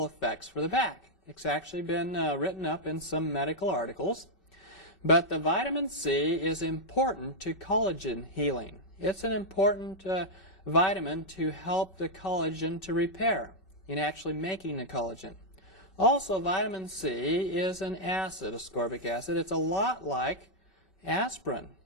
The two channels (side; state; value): right; late; 2.6 ms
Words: effects for the back. It's actually been written up in some medical articles. But the vitamin C is important to collagen healing. It's an important vitamin to help the collagen to repair in actually making the collagen. Also, vitamin C is an acid, ascorbic acid. It's a lot like aspirin